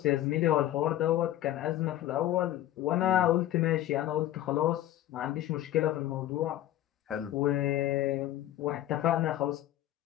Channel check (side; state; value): right; quieter; 13.5 dB